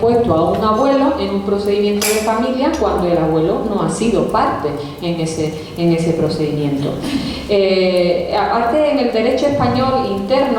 a un abuelo en un procedimiento de familia cuando el abuelo no ha sido parte en ese procedimiento? Aparte, en el derecho español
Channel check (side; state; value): both; identical; correlation 1.00